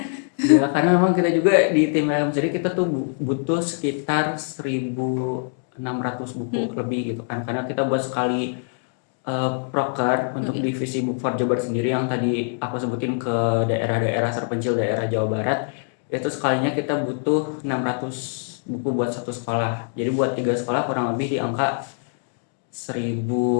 Ya, karena memang kita juga di tim LM sendiri kita tuh butuh sekitar 1.600 buku lebih gitu kan. Karena kita buat sekali proker untuk divisi Book for Jabar sendiri yang tadi aku sebutin ke daerah-daerah terpencil daerah Jawa Barat. Itu sekalinya kita butuh 600 buku buat satu sekolah. Jadi buat 3 sekolah kurang lebih di angka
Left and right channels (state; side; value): silent; right; digital silence